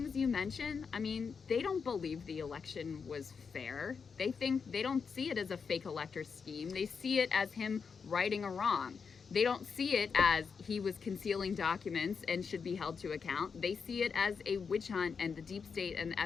you mentioned, they don't believe the election was fair. They don't see it as a fake elector scheme. They see it as him righting a wrong. They don't see it as he was concealing documents and should be held to account. They see it as a witch hunt and the deep state and the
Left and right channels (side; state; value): right; quieter; 5.8 dB